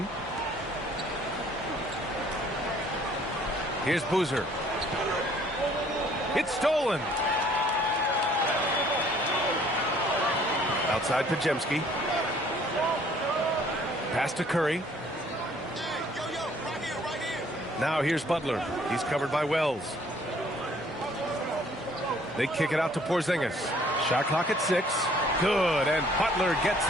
Here's Boozer. It's stolen. Outside Podziemski. Pass to Curry. Now here's Butler. He's covered by Wells. They kick it out to Porzingis. Shot clock at 6. Good, and Butler gets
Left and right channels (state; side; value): normal; both; correlation 0.59